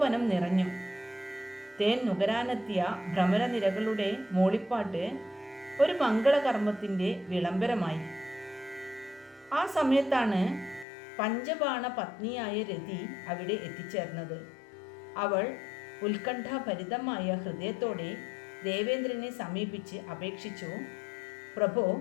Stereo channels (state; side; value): drops out; right; at 10.9 s